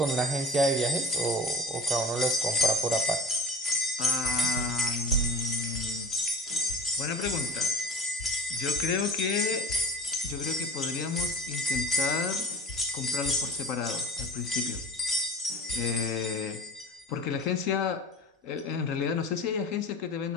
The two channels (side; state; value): both; normal; correlation 0.38